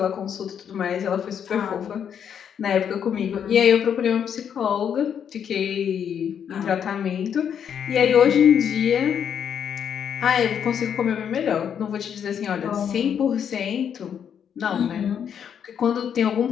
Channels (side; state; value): right; quieter; 8.2 dB